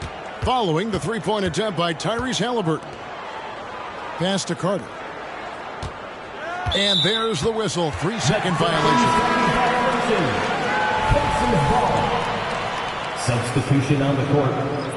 following the three-point attempt by Tyrese Halliburton. Pass to Carter. And there's the whistle. 3-second violation. Substitution on the court.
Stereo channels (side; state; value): both; identical; correlation 1.00